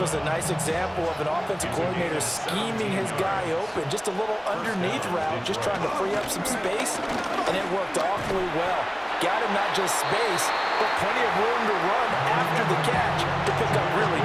a nice example of an offensive coordinator scheming his guy open. Just a little underneath route, just trying to free up some space, and it worked awfully well. Got him not just space, but plenty of room to run after the catch to pick up really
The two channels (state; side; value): identical; both; correlation 1.00